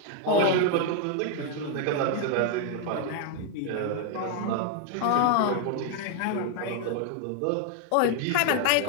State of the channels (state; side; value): different; both; correlation 0.00